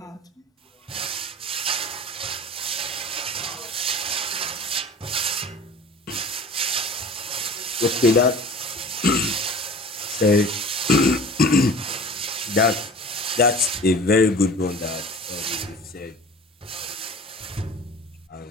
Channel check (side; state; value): both; normal; correlation 0.41